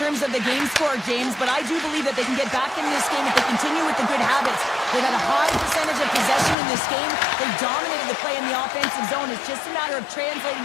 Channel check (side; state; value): right; drops out; at 6.6 s